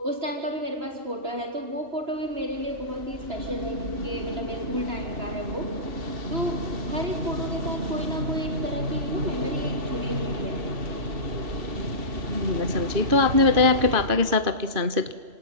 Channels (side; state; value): left; late; 3.0 ms